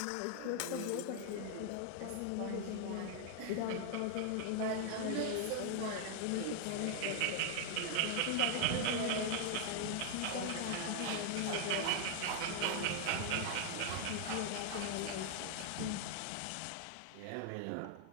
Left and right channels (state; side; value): different; both; correlation 0.00